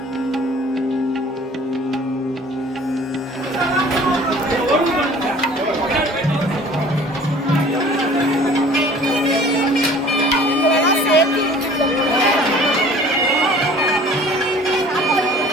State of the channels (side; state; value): both; normal; correlation 0.49